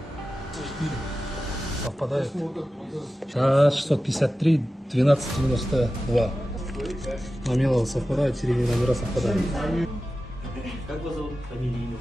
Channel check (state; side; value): normal; both; correlation 0.94